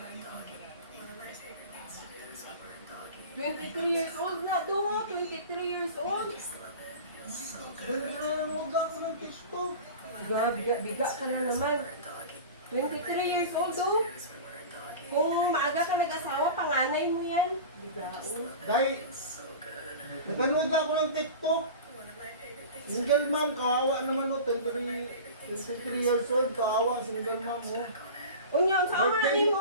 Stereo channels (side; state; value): both; inverted; correlation -0.34